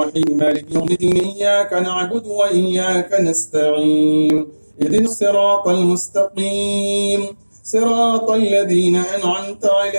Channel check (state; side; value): inverted; both; correlation -1.00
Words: मालिकि यौमिद्दीन इय्याका नअबुदु व इय्याका नस्तईन इहदिनस सिरातल मुस्तक़ीम सिरातल लज़ीना अनअमता